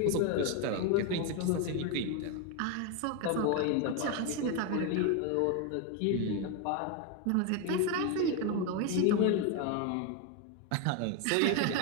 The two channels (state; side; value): different; both; correlation 0.01